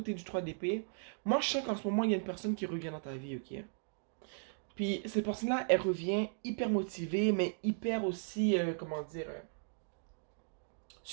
du 3 d'épée. Moi, je sens qu'en ce moment, il y a une personne qui revient dans ta vie, ok? Puis, cette personne-là, elle revient hyper motivée, mais hyper aussi, comment dire,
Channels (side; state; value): left; silent; digital silence